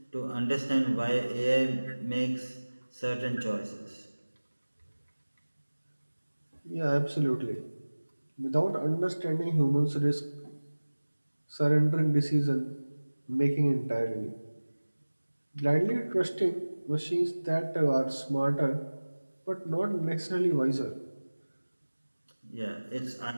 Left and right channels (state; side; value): inverted; both; correlation -1.00